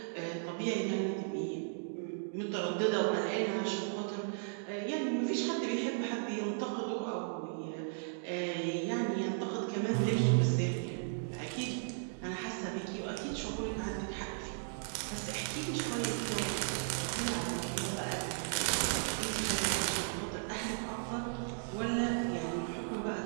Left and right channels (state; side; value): silent; left; digital silence